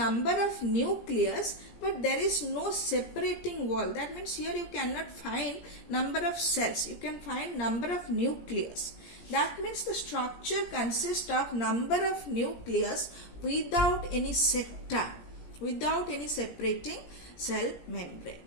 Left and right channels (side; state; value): right; late; 17 ms